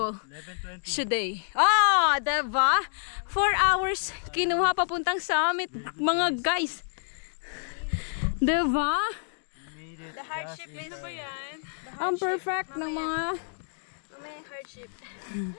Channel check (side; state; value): right; silent; digital silence